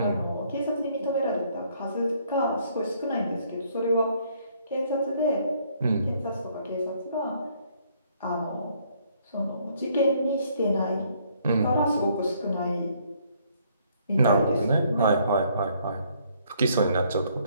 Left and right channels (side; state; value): both; inverted; correlation -0.66